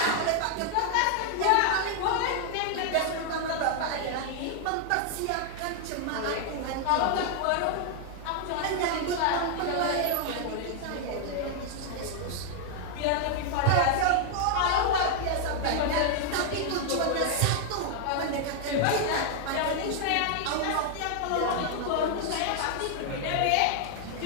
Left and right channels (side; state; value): both; different; correlation 0.00